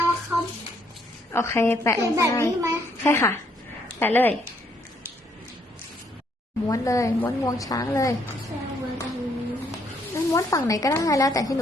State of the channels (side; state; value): both; normal; correlation 0.70